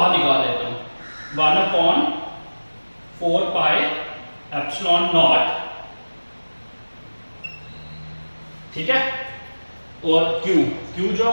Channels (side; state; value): both; inverted; correlation -1.00